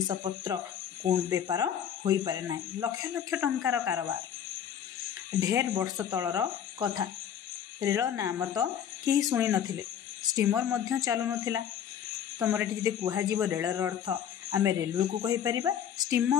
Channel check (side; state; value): right; quieter; 9.1 dB